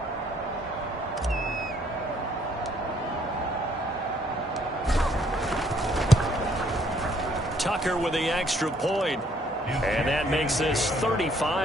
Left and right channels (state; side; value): normal; both; correlation 0.66